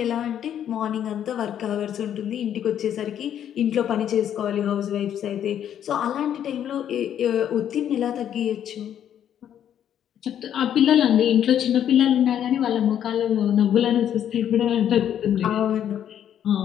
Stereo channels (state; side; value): quieter; right; 9.9 dB